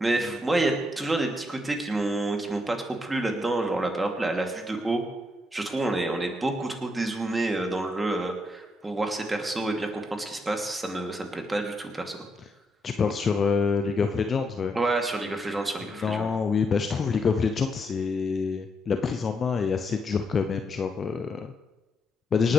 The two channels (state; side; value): normal; both; correlation 0.78